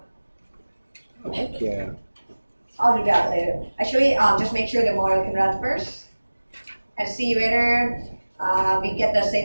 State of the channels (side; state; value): both; inverted; correlation -1.00